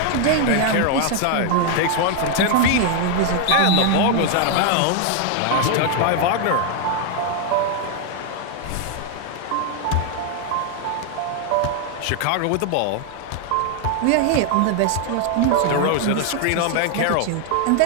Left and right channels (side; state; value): both; different; correlation 0.00